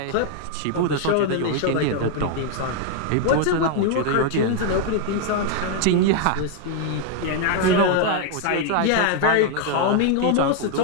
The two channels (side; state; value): both; different; correlation 0.00